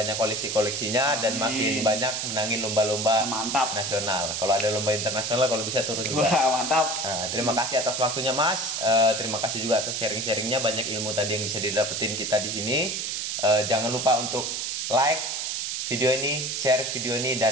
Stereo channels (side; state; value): right; noise; hiss, 2 dB below the sound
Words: koleksinya dan makin banyak menangin lomba-lomba nasional. Kalau ada lomba internasional, kalau bisa turun juga. Wah, mantap. Terima kasih atas waktunya Mas. Terima kasih juga atas sharing-sharingnya. Banyak ilmu tadi yang bisa didapetin kita di sini. Jangan lupa untuk like video ini, share video ini,